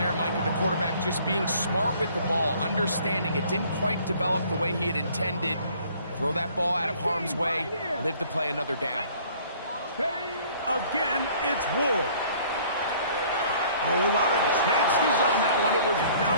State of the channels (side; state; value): both; inverted; correlation -0.56